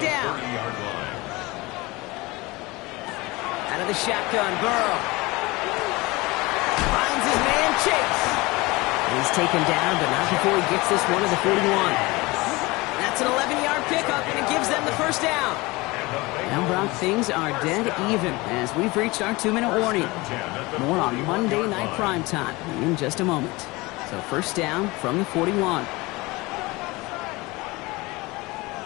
down. Out of the shotgun, Burrow. Finds his man, Chase. He's taken down, but not before he gets this one to the 41. That's an 11-yard pickup, and it gives them the 1st down. Now, Brock, things are dead even as we've reached our 2-minute warning. More on Monday Night Primetime in just a moment. So 1st down from the 41.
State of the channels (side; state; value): right; quieter; 22.7 dB